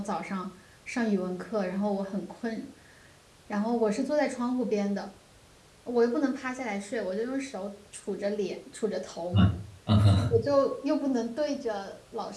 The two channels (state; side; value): identical; both; correlation 1.00